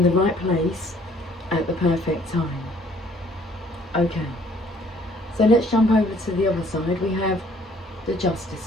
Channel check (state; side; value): normal; both; correlation 0.60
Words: the right place at the perfect time. Okay, so let's jump over to the other side. We have the